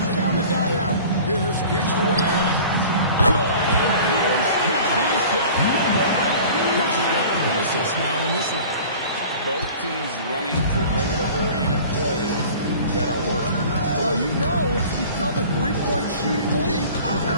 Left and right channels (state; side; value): inverted; both; correlation -0.43